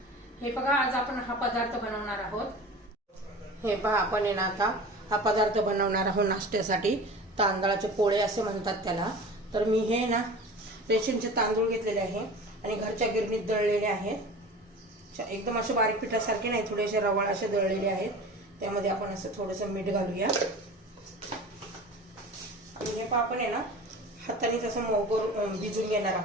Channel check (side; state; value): both; normal; correlation 0.37